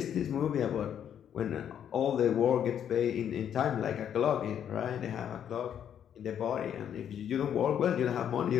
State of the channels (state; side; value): quieter; right; 9.2 dB